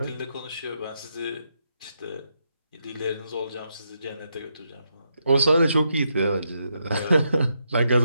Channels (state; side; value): inverted; both; correlation -0.81